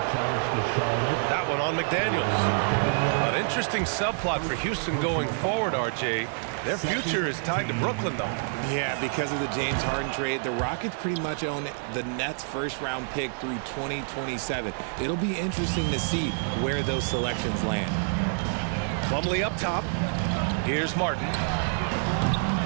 That one on McDaniels. An interesting subplot for Houston going forward, RJ. Their future is tied to Brooklyn, though. Yeah, because of the James Harden trade, the Rockets pretty much own the Nets' first-round pick through 2027. It'll be interesting to see where those selections land. Plumlee up top. Here's Martin.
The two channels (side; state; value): left; silent; 60 dB below the other